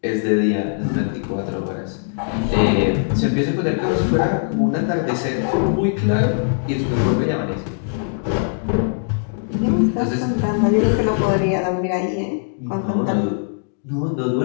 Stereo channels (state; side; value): silent; right; digital silence